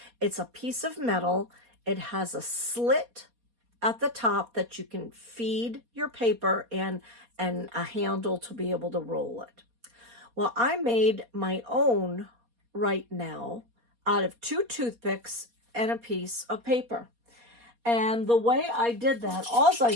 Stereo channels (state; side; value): late; left; 4.2 ms